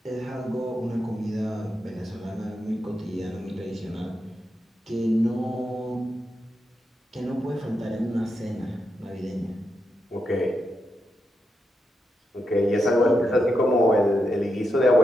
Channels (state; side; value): normal; both; correlation 0.85